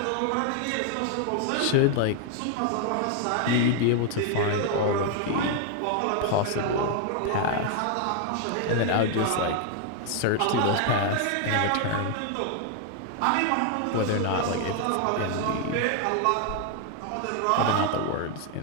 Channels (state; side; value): different; both; correlation 0.00